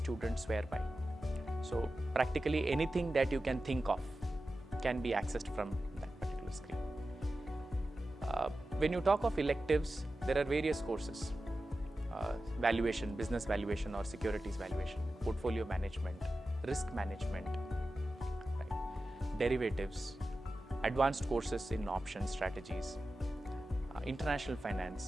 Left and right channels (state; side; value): normal; both; correlation 0.93